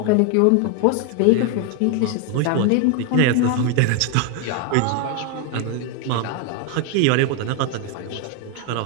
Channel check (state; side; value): different; both; correlation 0.01